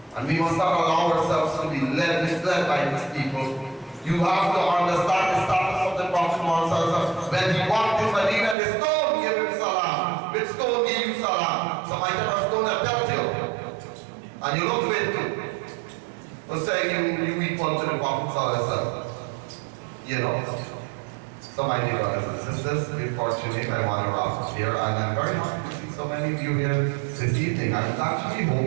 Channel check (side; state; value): left; drops out; at 8.6 s